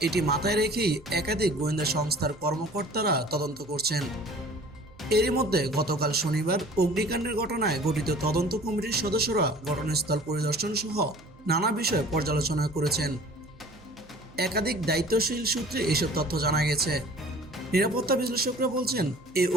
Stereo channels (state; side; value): noise; right; hum, 25 dB below the sound